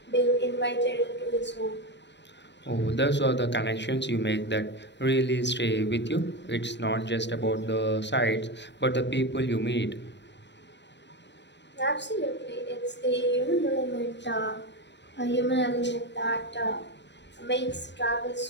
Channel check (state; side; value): late; right; 0.52 ms